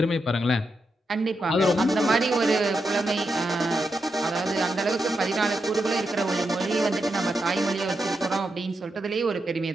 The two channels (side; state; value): both; normal; correlation 0.85